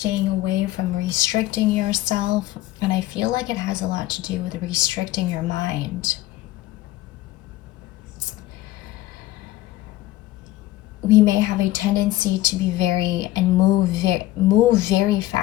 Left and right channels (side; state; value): right; quieter; 16.2 dB